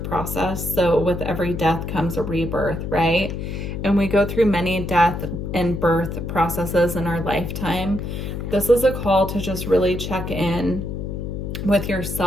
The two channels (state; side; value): noise; left; hum, 5 dB below the sound